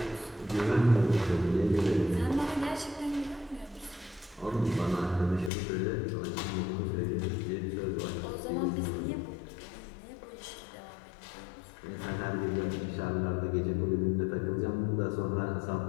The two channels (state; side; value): drops out; right; at 5.5 s